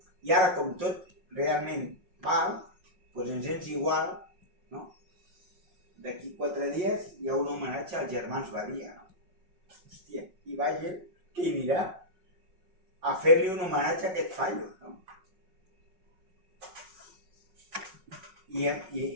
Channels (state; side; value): late; left; 5.4 ms